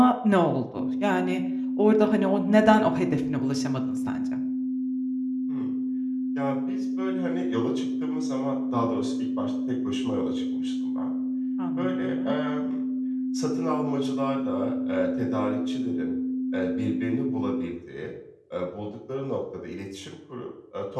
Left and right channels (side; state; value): both; identical; correlation 1.00